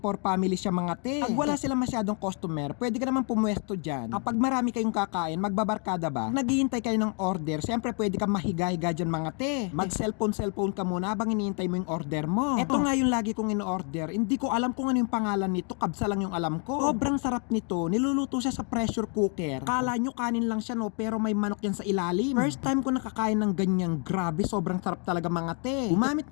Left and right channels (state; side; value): quieter; right; 38.8 dB